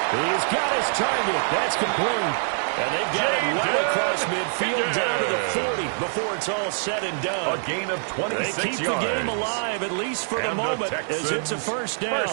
He's got his target. That's complete. And they've got it well across midfield down to the 40 before it's all said and done. A gain of 26 yards. They keep the game alive, at least for the moment, as it's a 1st down.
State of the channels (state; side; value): silent; left; digital silence